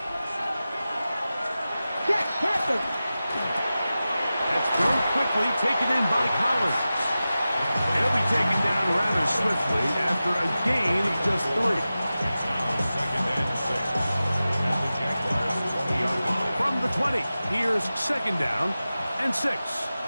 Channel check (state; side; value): inverted; both; correlation -0.95